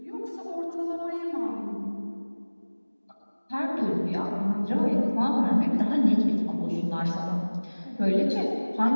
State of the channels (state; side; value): inverted; both; correlation -1.00